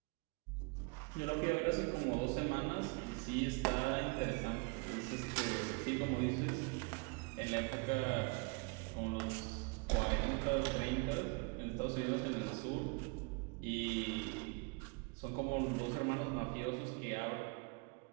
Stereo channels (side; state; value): left; quieter; 30.7 dB